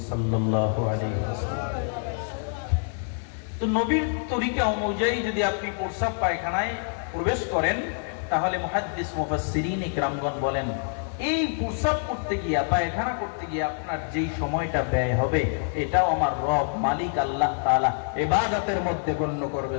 সাল্লাল্লাহু আলাইহি ওয়াসাল্লাম। তো নবীর তরিকা অনুযায়ী যদি আপনি প্রস্রাব পায়খানায় প্রবেশ করেন, তাহলে মুহাদ্দিস মুফাসসিরিন ইকরামগণ বলেন, এই প্রস্রাব করতে গিয়া, পায়খানা করতে গিয়ে আপনার যেই সময়টা ব্যয় হবে, এটাও আমার রব মালিক আল্লাহ তাআলা ইবাদতের মধ্যে গণ্য করবে।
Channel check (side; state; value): right; silent; 59 dB below the other